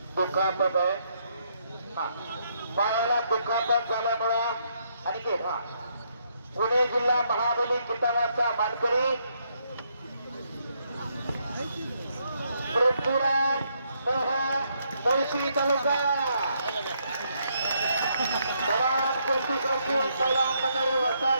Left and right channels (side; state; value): both; inverted; correlation -0.75